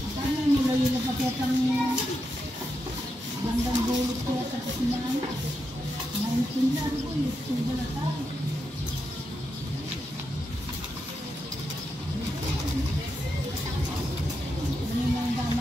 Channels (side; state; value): both; normal; correlation 0.85